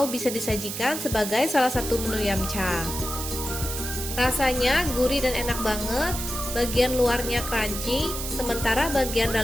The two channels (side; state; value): right; noise; hiss, 6 dB below the sound